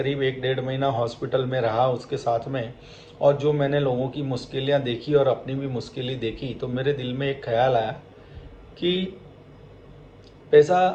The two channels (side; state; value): both; identical; correlation 1.00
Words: 1-1.5 महीना हॉस्पिटल में रहा उसके साथ में, और जो मैंने लोगों की मुश्किलें देखी और अपनी भी मुश्किलें देखी, तो मेरे दिल में एक ख्याल आया कि